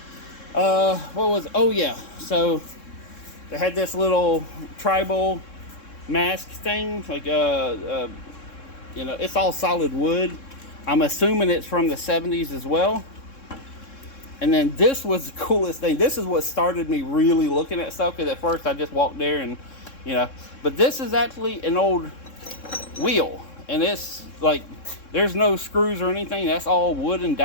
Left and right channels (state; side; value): late; right; 3.7 ms